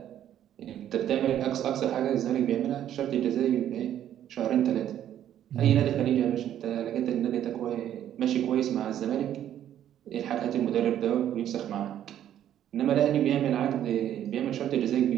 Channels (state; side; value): quieter; left; 10.9 dB